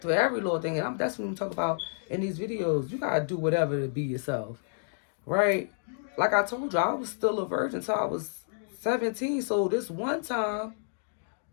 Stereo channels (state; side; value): silent; right; digital silence